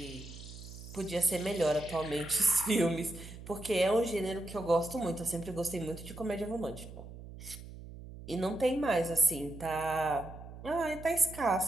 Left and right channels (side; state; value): right; noise; hum, 14 dB below the sound